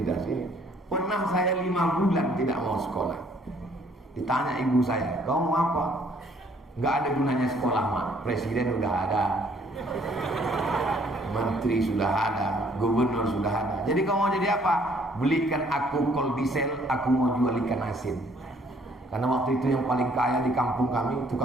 sini. Pernah saya 5 bulan tidak mau sekolah. Ditanya ibu saya, kamu mau apa? Gak ada gunanya sekolah, Mak. Presiden udah ada, menteri sudah ada, gubernur sudah ada. Jadi kamu mau jadi apa? Belikan aku kol diesel, aku mau jual ikan asin. Karena waktu itu yang paling kaya di kampung kami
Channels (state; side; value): normal; both; correlation 0.62